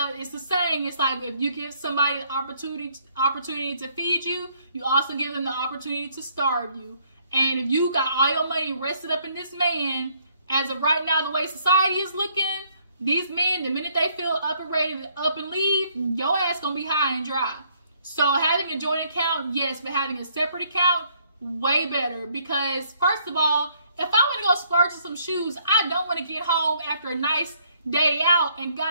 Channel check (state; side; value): inverted; both; correlation -0.67